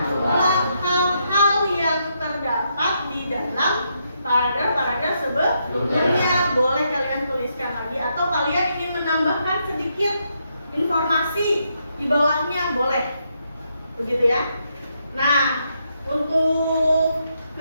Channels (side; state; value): both; inverted; correlation -0.79